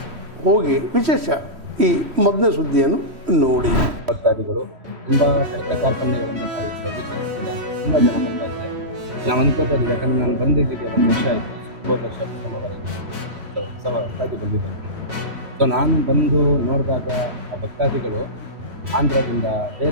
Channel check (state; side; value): late; left; 3.1 ms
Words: ಹೋಗಿ ವಿಶೇಷ ಈ ಮೊದಲನೇ ಸುದ್ದಿಯನ್ನು ನೋಡಿ. ಭಕ್ತಾದಿಗಳು ತುಂಬ ಕಷ್ಟ ಕಾರ್ಪಣ್ಯಗಳಿಂದ ತುಂಬ ಜನ ಬರ್ತಾ ಇದ್ದಾರೆ. ನಾವು ಅನ್ಕೋತಾ ಇದ್ದೀವಿ, ಯಾಕಂದರೆ ನಾನು ಬಂದಿದ್ದಕ್ಕೆ 1 ವರ್ಷ ಆಯಿತು, 9 ವರ್ಷ ಉತ್ಸವ ಹೊಸದಾಗಿ ಬಂದಿದ್ದೇನೆ. ಸೊ ನಾನು ಬಂದು ನೋಡಿದಾಗ ಆ ಭಕ್ತಾದಿಗಳು ಆಂಧ್ರದಿಂದ